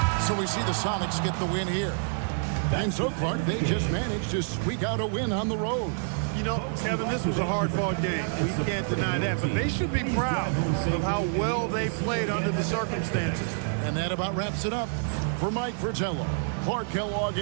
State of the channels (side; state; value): left; silent; 60 dB below the other